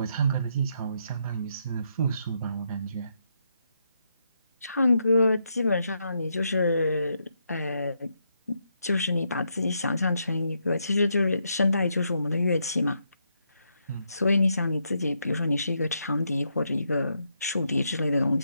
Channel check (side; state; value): both; inverted; correlation -0.79